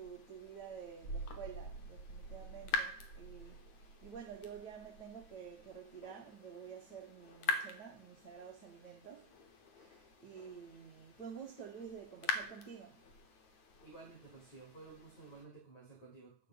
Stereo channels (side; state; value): right; late; 9.2 ms